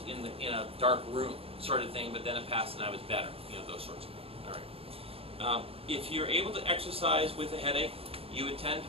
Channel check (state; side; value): late; left; 0.28 ms